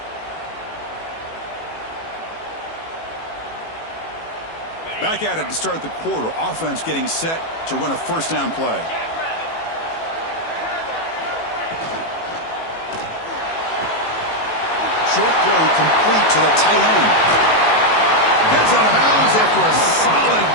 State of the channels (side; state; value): right; late; 18 ms